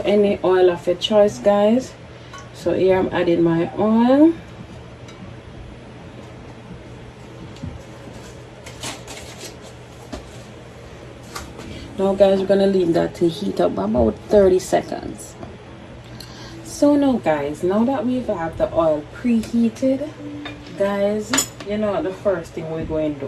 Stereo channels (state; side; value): identical; both; correlation 1.00